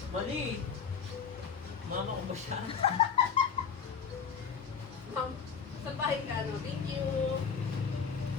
Mali! Mama ko ba siya? Ma'am, sa bahay ka, ano? Thank you.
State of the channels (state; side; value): quieter; right; 6.5 dB